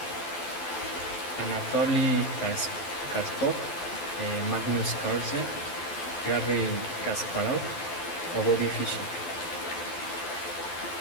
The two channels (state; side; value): late; right; 12 ms